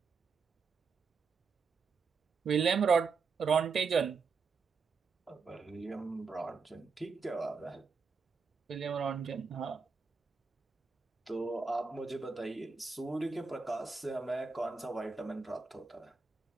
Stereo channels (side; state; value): left; quieter; 5.0 dB